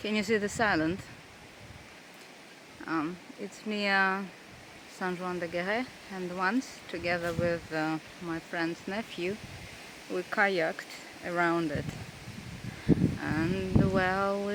you see this island? It's near Saint-Jacques-de-Compostelle, and once, together with my friend's nephew, we kayaked around it. And well,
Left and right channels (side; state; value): both; identical; correlation 1.00